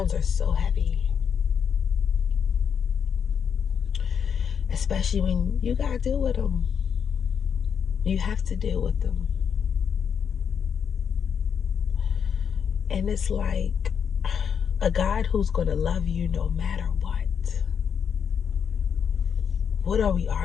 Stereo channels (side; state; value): right; quieter; 7.2 dB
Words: are so heavy. Especially when you gotta deal with them. You have to deal with them. And it's like a God who's gonna love you no matter what. What are we